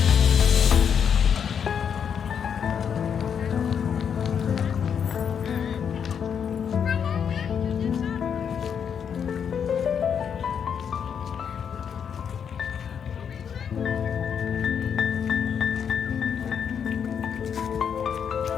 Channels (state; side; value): quieter; right; 7.6 dB